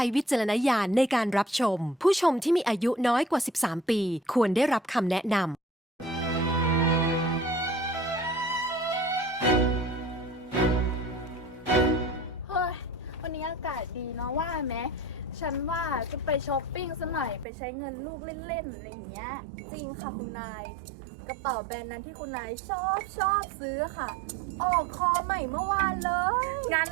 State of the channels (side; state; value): left; drops out; at 17.4 s